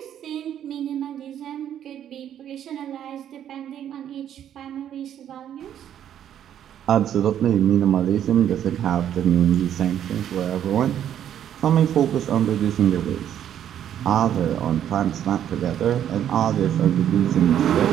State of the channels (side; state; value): left; quieter; 10.2 dB